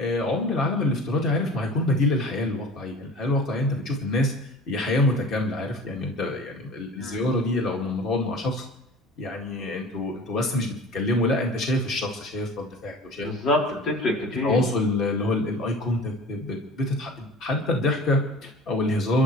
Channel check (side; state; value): both; normal; correlation 0.41